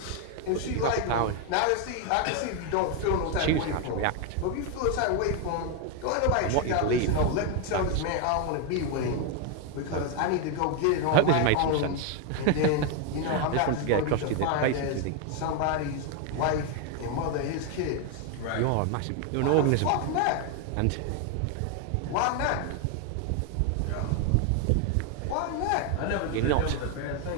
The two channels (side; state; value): both; different; correlation 0.01